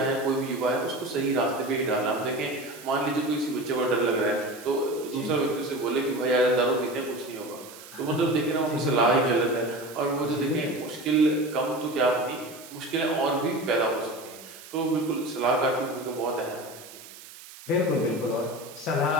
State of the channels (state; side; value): noise; right; hiss, 17 dB below the sound